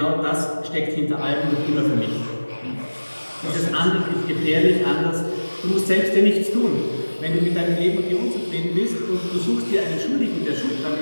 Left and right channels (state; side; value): inverted; both; correlation -1.00